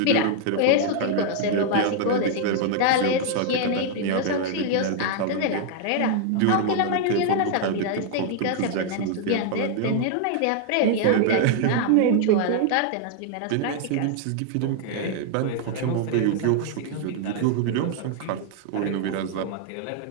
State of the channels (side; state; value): both; different; correlation 0.00